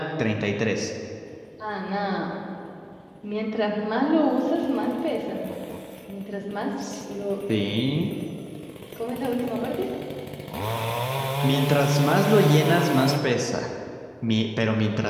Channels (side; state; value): both; identical; correlation 1.00